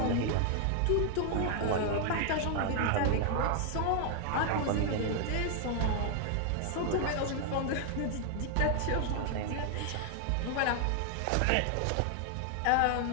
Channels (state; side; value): different; both; correlation 0.00